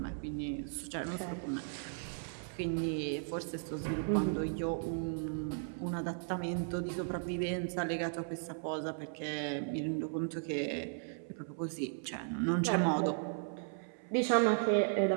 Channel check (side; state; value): left; silent; 54 dB below the other